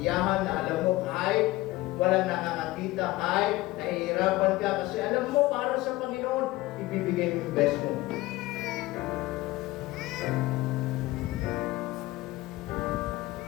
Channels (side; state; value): right; quieter; 18.9 dB